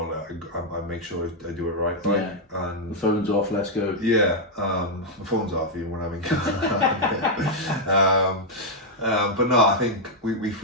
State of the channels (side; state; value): both; normal; correlation -0.02